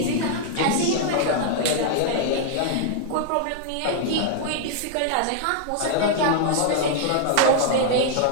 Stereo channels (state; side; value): different; both; correlation -0.01